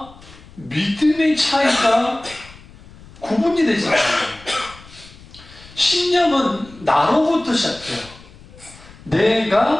믿음의 차이가 구분이 되지 않아요. 신념은 나로부터 시작해요.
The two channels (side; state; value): left; noise; rumble, 22 dB below the sound